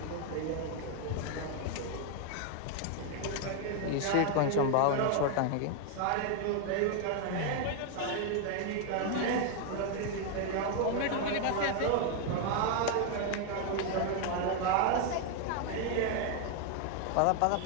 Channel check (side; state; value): both; different; correlation 0.00